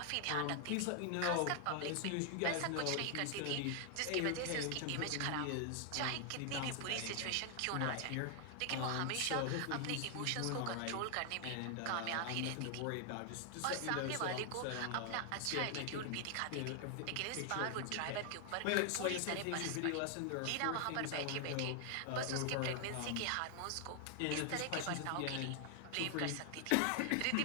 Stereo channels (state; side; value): different; both; correlation 0.00